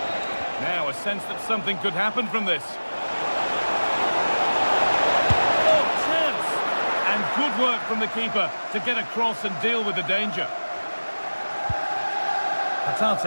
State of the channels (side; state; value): both; inverted; correlation -1.00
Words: Now a sense that something could happen from this. Oh, chance! And good work from the keeper to get across and deal with the danger.